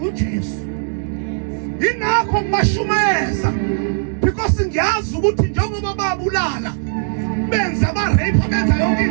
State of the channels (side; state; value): left; silent; digital silence